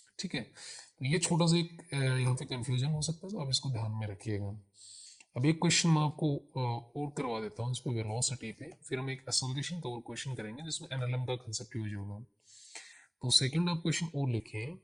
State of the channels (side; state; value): both; identical; correlation 1.00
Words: ठीक है। तो ये छोटा सा एक यहाँ पे कंफ्यूजन हो सकता है, तो आप इसको ध्यान में रखिएगा। अब एक क्वेश्चन मैं आपको और करवा देता हूँ इस पे वेलोसिटी पे, फिर हम एक एसोसिएशन का और क्वेश्चन करेंगे जिसमें एनएलएम का कंसेप्ट यूज होगा। तो सेकंड आप क्वेश्चन और लिखें,